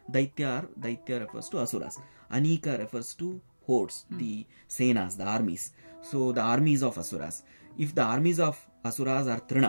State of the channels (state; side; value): inverted; both; correlation -1.00